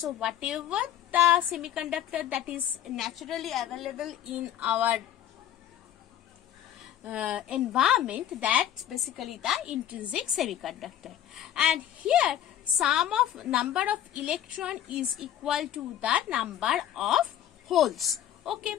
whatever the semiconductor that is naturally available in our environment, that's basically the intrinsic semiconductor. And here number of electron is equal to the number of holes. Okay,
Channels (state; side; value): quieter; right; 11.1 dB